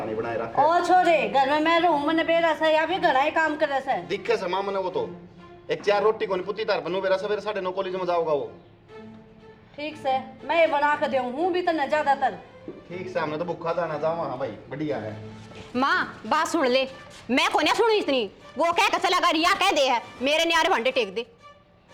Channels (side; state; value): both; identical; correlation 1.00